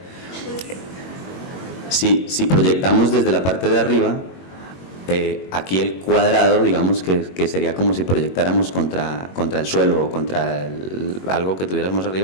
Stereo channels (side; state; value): right; late; 21 ms